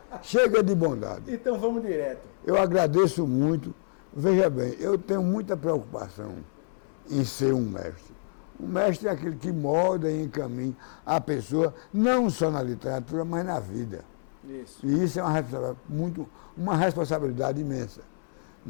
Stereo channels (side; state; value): right; silent; 59 dB below the other